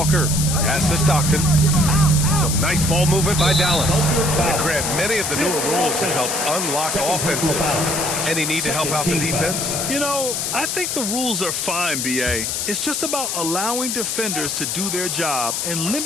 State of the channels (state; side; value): noise; left; hiss, 1 dB below the sound